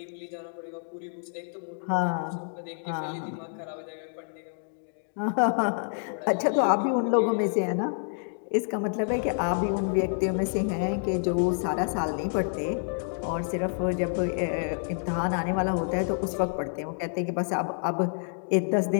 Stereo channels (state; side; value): silent; right; digital silence